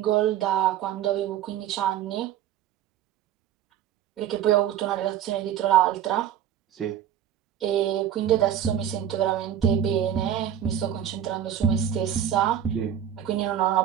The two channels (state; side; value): quieter; left; 10.2 dB